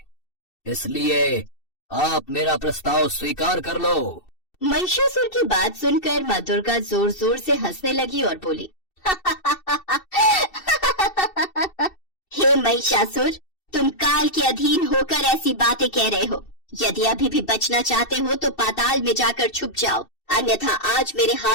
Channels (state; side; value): late; right; 2.7 ms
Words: इसलिए आप मेरा प्रस्ताव स्वीकार कर लो। महिषासुर की बात सुनकर माँ दुर्गा जोर जोर से हंसने लगी और बोली, हे महिषासुर, तुम काल के अधीन होकर ऐसी बातें कह रहे हो। यदि अभी भी बचना चाहते हो तो पाताल में जाकर छुप जाओ, अन्यथा आज मेरे